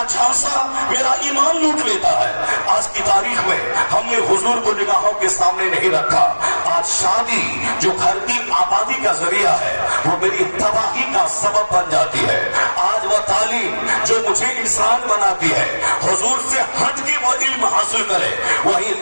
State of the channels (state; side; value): inverted; both; correlation -1.00